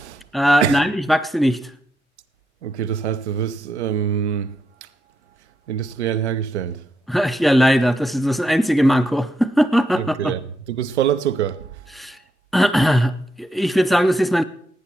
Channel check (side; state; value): both; normal; correlation 0.80